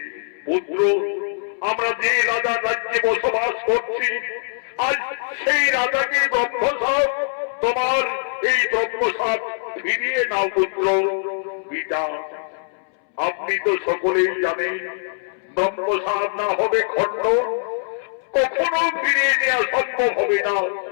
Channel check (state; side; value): silent; right; 64 dB below the other